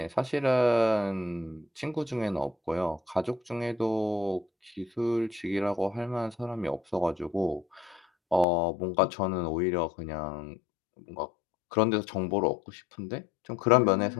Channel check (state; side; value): drops out; right; at 8.5 s